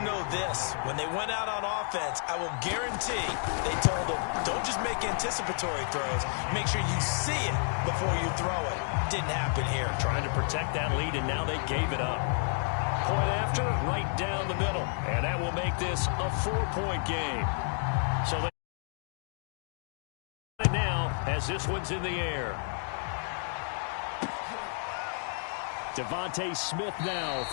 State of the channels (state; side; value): silent; right; 55 dB below the other